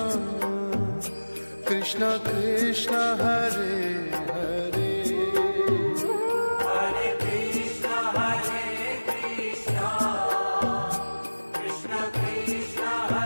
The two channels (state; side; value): inverted; both; correlation -1.00